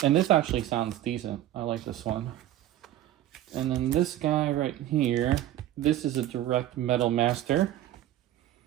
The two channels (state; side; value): quieter; left; 13.2 dB